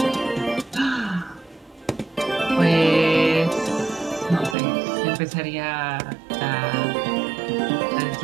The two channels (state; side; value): drops out; left; at 4.5 s